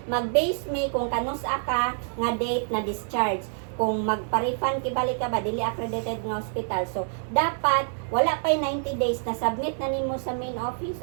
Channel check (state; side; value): silent; left; digital silence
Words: mag-base me kung kanus ka nga date na discharge. Kung magpa-refund kibalik ka ba dili accredited nga hospital. So dapat wala pa 90 days na submit na nimo sa main office